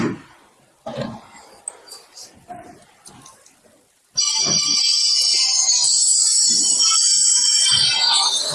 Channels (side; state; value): both; identical; correlation 1.00